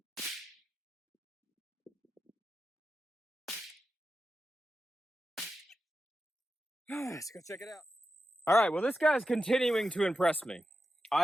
Let's go check it out. All right, well, this guy's continuing to impress me.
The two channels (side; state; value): both; normal; correlation 0.91